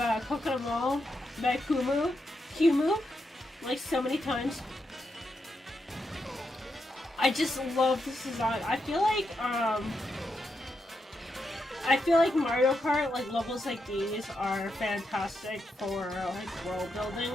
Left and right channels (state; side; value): normal; both; correlation 0.84